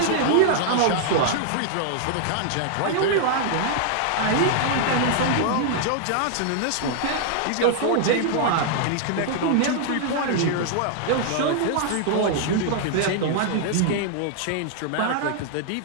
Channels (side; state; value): both; different; correlation -0.01